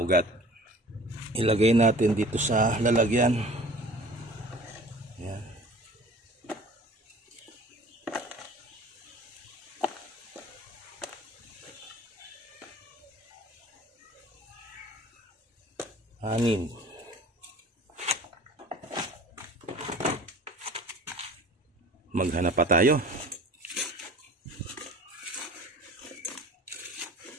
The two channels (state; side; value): normal; both; correlation 0.45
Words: ugat. Ilagay natin dito sa lalagyan. Ayan. Anim. Maghanap pa tayo.